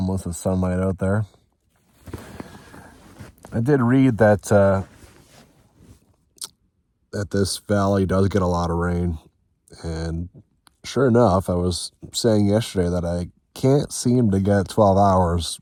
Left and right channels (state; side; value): identical; both; correlation 1.00